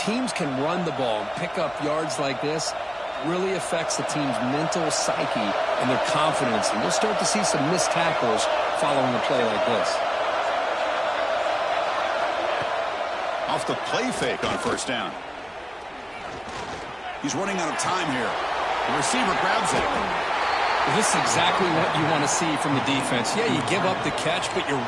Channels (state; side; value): identical; both; correlation 1.00